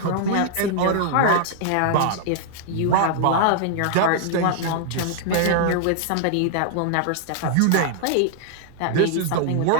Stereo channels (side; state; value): both; different; correlation -0.01